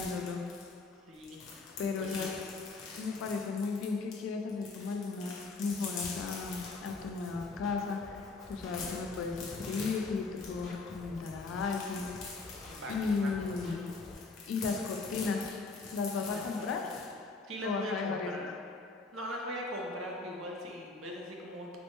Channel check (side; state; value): right; quieter; 3.8 dB